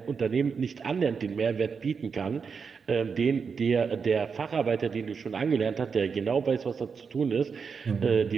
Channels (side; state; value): left; quieter; 5.7 dB